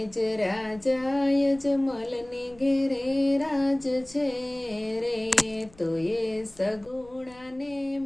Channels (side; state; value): left; noise; rumble, 26 dB below the sound